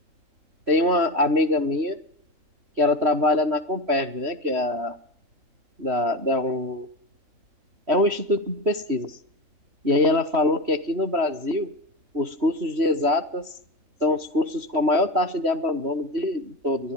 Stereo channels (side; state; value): left; late; 3.1 ms